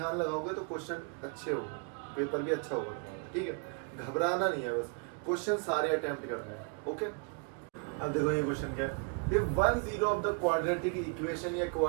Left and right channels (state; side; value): quieter; left; 35.2 dB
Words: लगाओगे तो क्वेश्चन अच्छे होंगे, पेपर भी अच्छा होगा तुम्हारा, ठीक है। घबराना नहीं है, बस क्वेश्चन सारे अटेम्प्ट करने हैं, ओके। अब देखो ये क्वेश्चन क्या है, if one zero of the quadratic equation या